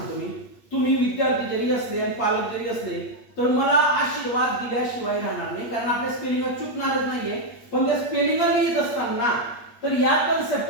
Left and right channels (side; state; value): right; late; 8.5 ms